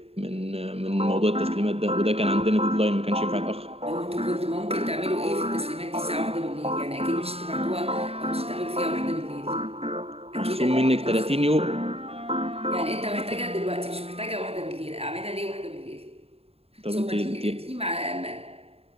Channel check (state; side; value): late; left; 0.29 ms